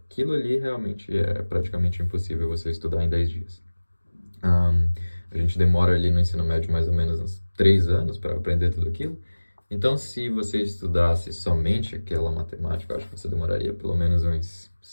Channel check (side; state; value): both; inverted; correlation -1.00